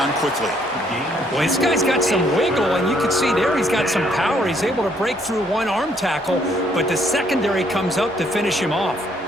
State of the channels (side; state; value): both; normal; correlation 0.68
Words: quickly. Well, this guy's got some wiggle, and you can see there he's got some power. He's able to break through one arm tackle, but the secondary comes up to finish him off.